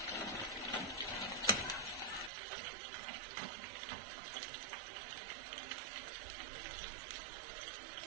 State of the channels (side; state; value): left; drops out; at 2.3 s